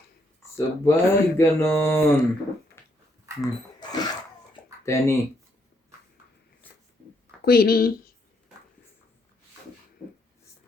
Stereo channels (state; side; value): normal; both; correlation 0.74